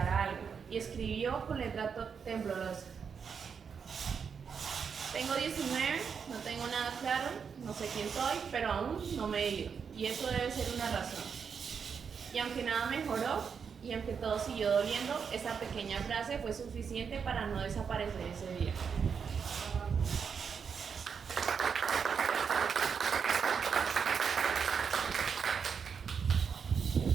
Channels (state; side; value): quieter; left; 6.5 dB